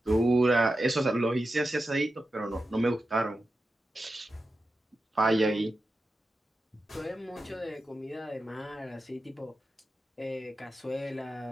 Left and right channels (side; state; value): both; normal; correlation 0.91